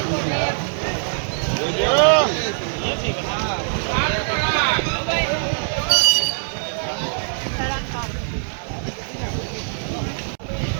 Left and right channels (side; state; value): left; silent; digital silence